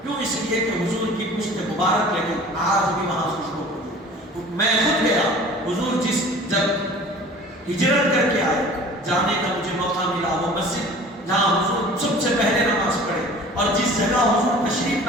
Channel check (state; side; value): normal; both; correlation 0.44